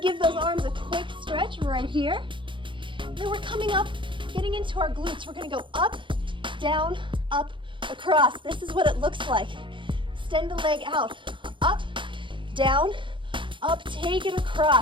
give those arms a quick stretch right here. Then we're coming up, getting into our glutes. We're gonna go up, down, up, across. This is what it looks like. Extend the leg out. Up, down, up, take it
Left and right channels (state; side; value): late; left; 0.24 ms